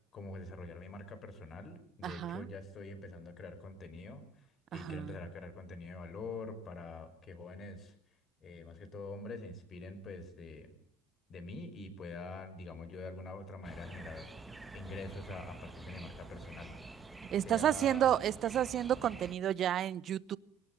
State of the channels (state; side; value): quieter; left; 7.2 dB